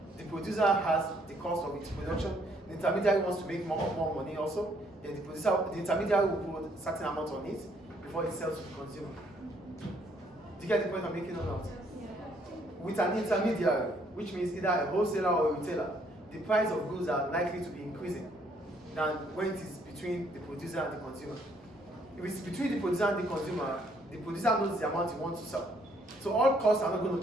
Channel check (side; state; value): both; normal; correlation 0.67